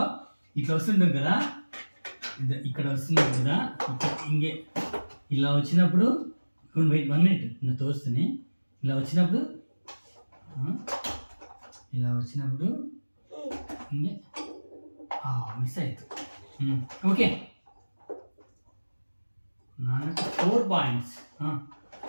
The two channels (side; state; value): both; inverted; correlation -1.00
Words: ఇట్లా వస్తుంటాం కదా. ఇక్కడ వస్తున్నావు కదా. ఇంకే ఇలా వచ్చినప్పుడు 1 మినిట్ నా తోస్తూనే ఇలా వచ్చినప్పుడు ఇంకే మిస్ అవుతుంది. ఓకే నాన్నకు 4 పాయింట్స్.